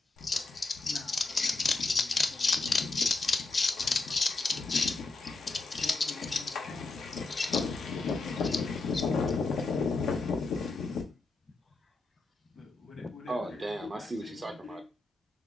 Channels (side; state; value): right; quieter; 3.5 dB